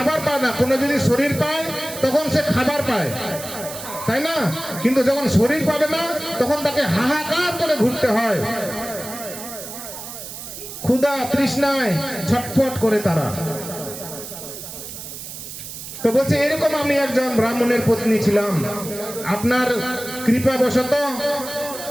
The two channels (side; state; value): right; noise; hiss, 11 dB below the sound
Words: পায় না। কোনো যদি শরীর পায় তখন সে খাবার পায়, তাই না? কিন্তু যখন শরীর পাবে না তখন তাকে হাহাকার করে ঘুরতে হয়, ক্ষুধা তৃষ্ণায় ছটফট করে তারা। তো বলছে, এরকম আমি একজন ব্রাহ্মণের পত্নী ছিলাম। আপনার কৃপাবশত